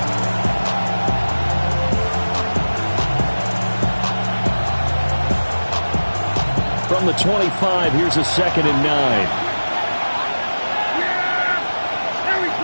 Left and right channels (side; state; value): both; inverted; correlation -1.00